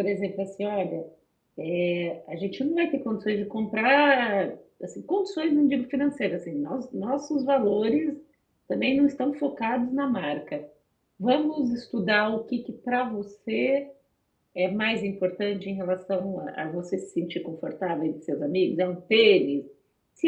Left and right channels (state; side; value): identical; both; correlation 1.00